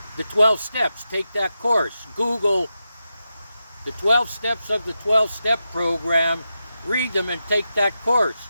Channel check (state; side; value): inverted; both; correlation -0.89